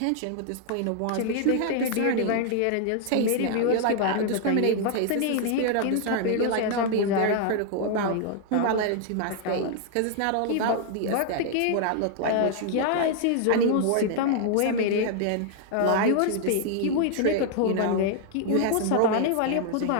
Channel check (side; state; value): both; different; correlation 0.00